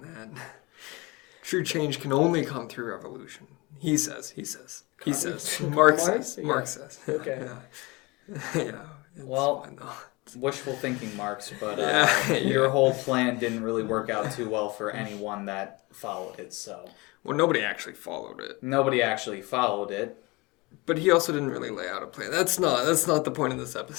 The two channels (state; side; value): quieter; right; 24.6 dB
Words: that. True change can only come through revolution. He says. Marx says. Marx says. Okay. Yeah. Well, wishful thinking, Marx, but your whole plan didn't really work out too well for anyone that followed it. So. Well, nobody actually followed it. But he also didn't really lay out a plan. That's not the point of this